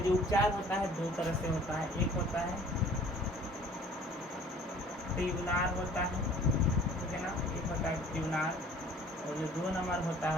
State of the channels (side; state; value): both; normal; correlation 0.52